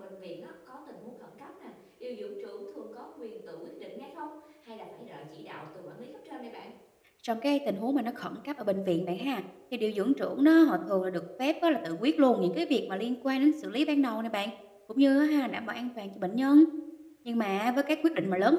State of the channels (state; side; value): identical; both; correlation 1.00